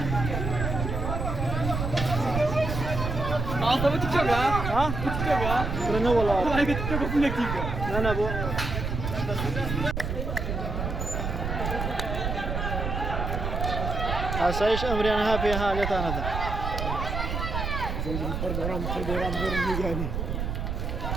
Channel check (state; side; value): noise; right; rumble, 3 dB below the sound